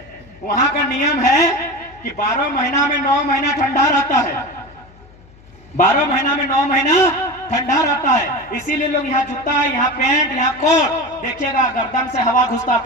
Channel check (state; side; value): noise; left; hum, 25 dB below the sound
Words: वहां का नियम है कि 12 महीना में 9 महीना ठंडा रहता है। 12 महीना में 9 महीना ठंडा रहता है, इसीलिए लोग यहाँ जूता, यहाँ पैंट, यहाँ कोट, देखिएगा गर्दन से हवा घुसता